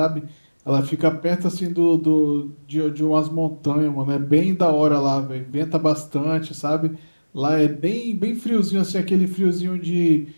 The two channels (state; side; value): inverted; both; correlation -1.00